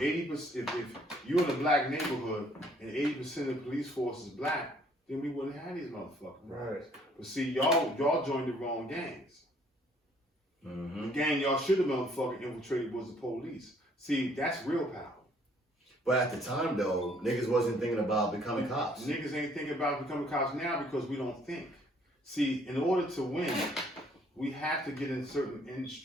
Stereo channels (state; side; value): normal; both; correlation 0.62